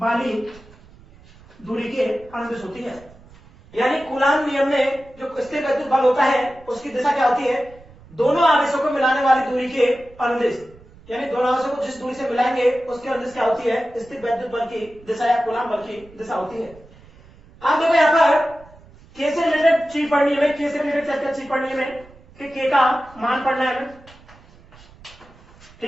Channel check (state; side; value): noise; right; rumble, 24 dB below the sound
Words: दूरी के अनुदिश होती है। यानी कूलाम नियम में जो स्थिर वैद्युत बल होता है उसकी दिशा क्या होती है? दोनों आवेशों को मिलाने वाली दूरी के अनुदिश, यानी दोनों आवेशों को जिस दूरी से मिलाएंगे उसके अनुदिश क्या होती है? स्थिर वैद्युत बल की दिशा या कूलाम बल की दिशा होती है। आप देखो यहाँ पर K से रिलेटेड चीज पढ़नी है, K से रिलेटेड क्या चीज पढ़नी है कि K का मान पढ़ना है,